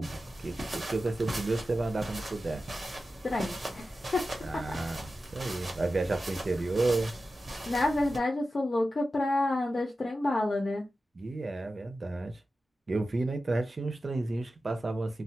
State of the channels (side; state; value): both; normal; correlation 0.93